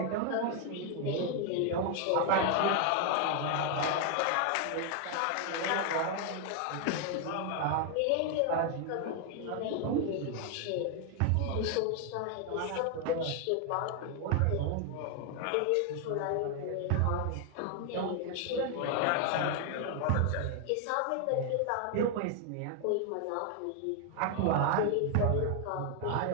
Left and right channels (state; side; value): different; both; correlation 0.00